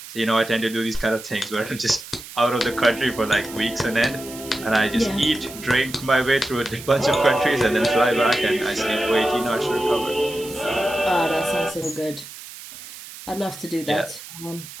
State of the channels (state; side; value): noise; right; hiss, 14 dB below the sound